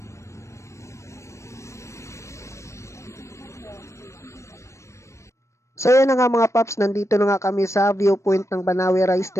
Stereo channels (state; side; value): late; right; 0.14 ms